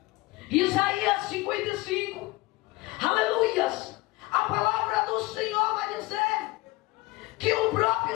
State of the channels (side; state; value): right; quieter; 20.8 dB